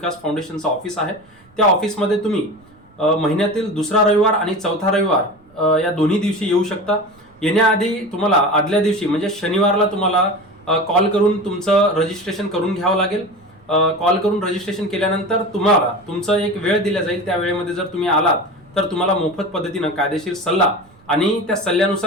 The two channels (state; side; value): noise; right; rumble, 29 dB below the sound